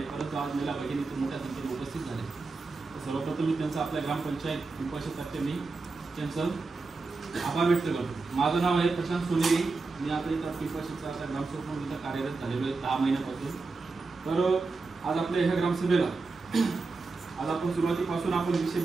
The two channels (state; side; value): quieter; left; 3.9 dB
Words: परंतु आज महिला भगिनी इथं मोठ्या संख्येने उपस्थित झाले. सर्वप्रथम मी त्यांचा आपल्या ग्रामपंचायत पिंपळशेततर्फे मी त्यांचं आभार व्यक्त करतो. माझं नाव आहे प्रशांत सोनेरी. मी आता इथं पिंपळशेतचा आता ग्रामसेवक म्हणून इथं कार्यरत झालेलो आहे 10 महिन्यापासून. तर आज आपल्या ह्या ग्रामसभेला आज आपण सुरुवातीपासून आपण विषय